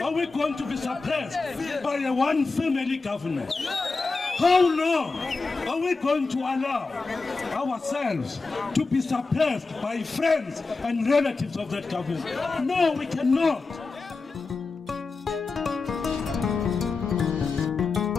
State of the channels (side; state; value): right; quieter; 4.0 dB